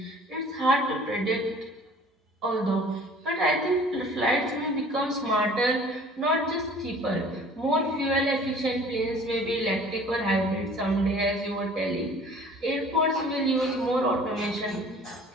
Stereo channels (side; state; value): both; normal; correlation 0.49